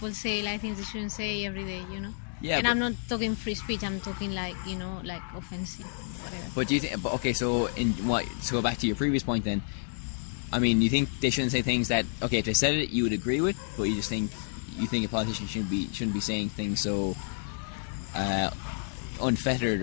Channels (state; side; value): silent; right; digital silence